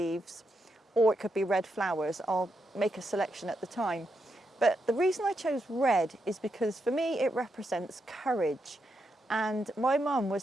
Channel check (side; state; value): both; normal; correlation 0.83